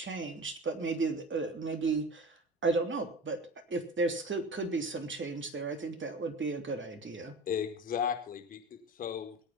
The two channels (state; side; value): normal; both; correlation 0.33